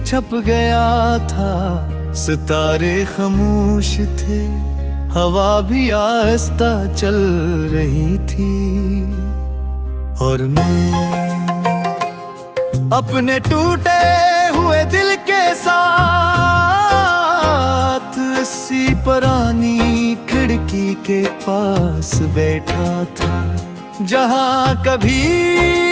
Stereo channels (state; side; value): identical; both; correlation 1.00